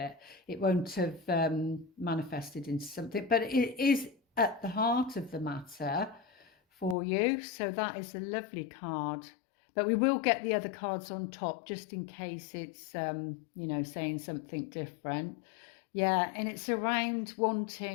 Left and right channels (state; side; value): drops out; right; at 7.0 s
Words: It won't have manifested into something, but it is at the heart of the matter for you. So that is a lovely card, but we will get the other cards on top just in case it's you know, saying something different. Yeah, and it's around